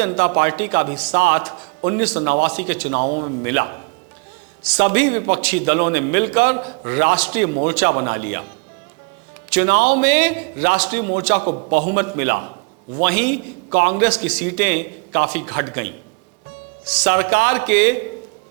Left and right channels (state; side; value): quieter; left; 31.4 dB